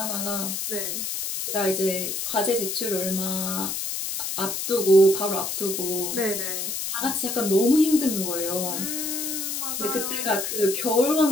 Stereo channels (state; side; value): noise; left; hiss, 3 dB below the sound